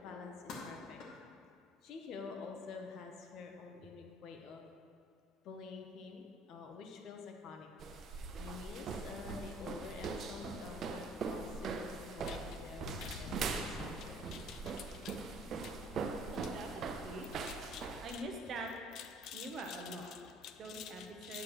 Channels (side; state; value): both; normal; correlation 0.56